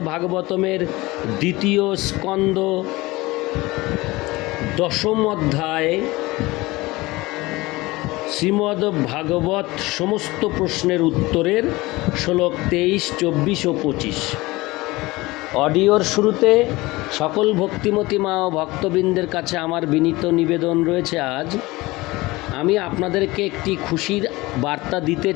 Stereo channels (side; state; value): right; quieter; 20.9 dB